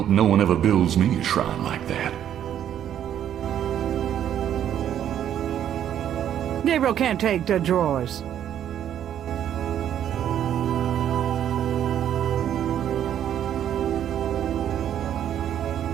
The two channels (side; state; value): left; quieter; 10.2 dB